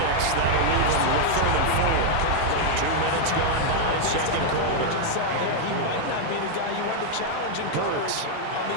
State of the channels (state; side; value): different; both; correlation 0.00